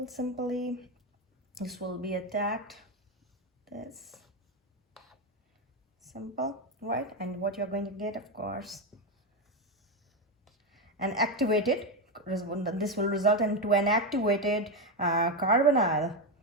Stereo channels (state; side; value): normal; both; correlation 0.10